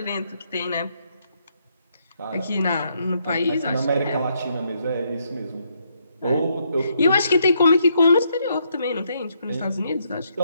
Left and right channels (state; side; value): inverted; both; correlation -0.75